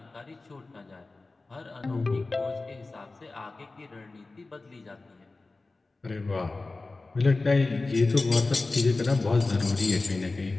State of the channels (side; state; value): right; quieter; 3.4 dB